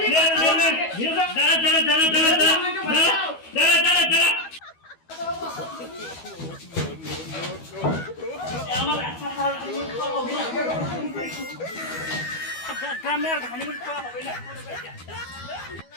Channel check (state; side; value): late; right; 12 ms